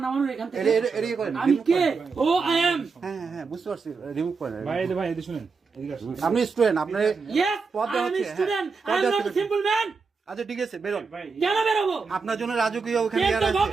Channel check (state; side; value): quieter; left; 4.8 dB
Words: নামানোর এখান থেকে? এড়িয়ে করেন। আমি কে? ও আই এম। হ্যাঁ হ্যাঁ বুঝতে পারছি, রিমুভ করেন। ভাই এদিকে শুনেন, আপনি স্টুডেন্ট, আপনার ইয়েস পদ আই দেওয়া এম হচ্ছে। Student, I am not a simple man. আচ্ছা ঠিক আছে, বেরোন। কেন বেরোবো? আপনার জন্য রাজকীয় ওখানে টেন ইয়ার টু আছে,